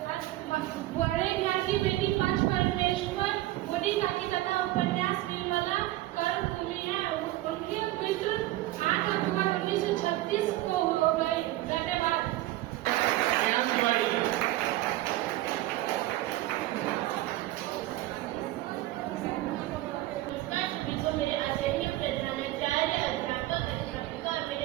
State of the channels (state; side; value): quieter; left; 16.7 dB